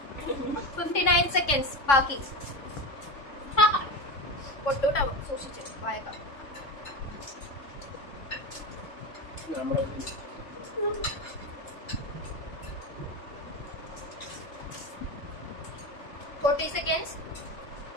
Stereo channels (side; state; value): right; late; 3.6 ms